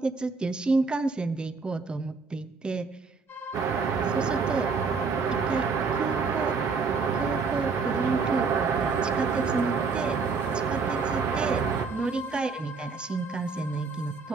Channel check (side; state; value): left; quieter; 4.7 dB